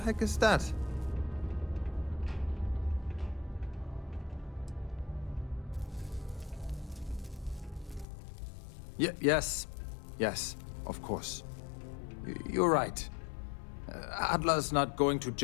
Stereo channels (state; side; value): drops out; right; at 8.1 s